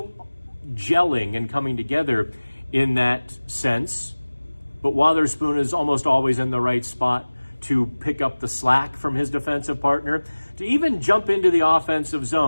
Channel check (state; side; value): inverted; both; correlation -1.00